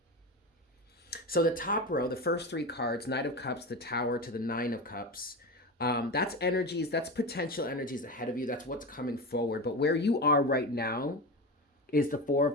So the top row, the first 3 cards, Knight of Cups, the Tower to the 9 of Cups, that's energies, that's potential energies ahead of you. That's what's coming forward. But where you are right now is the 4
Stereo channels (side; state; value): both; normal; correlation 0.23